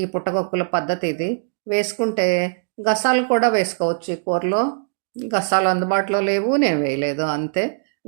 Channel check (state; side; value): silent; left; digital silence